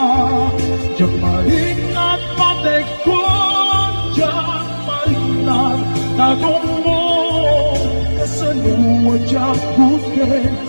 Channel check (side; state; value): both; inverted; correlation -1.00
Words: patek ko Diyak marik na Tagong mo Kasaluwa Diyak sagutin